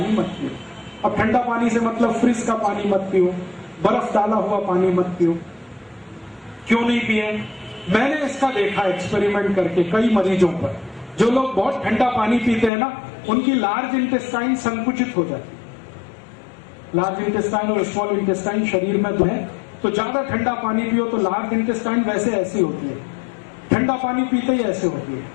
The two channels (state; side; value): drops out; right; at 12.7 s